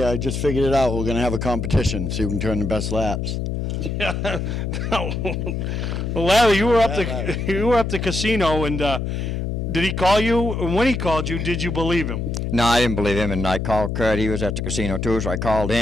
I just figured it out. We're going to have a competition, see who can turn the best laps. Yeah. Well, Larry, you were up the casino, and did he call you? And when he called you, did you believe him? No, I didn't believe him, and I called Kurt. He was at the casino, too, so I called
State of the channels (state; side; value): noise; left; hum, 2 dB below the sound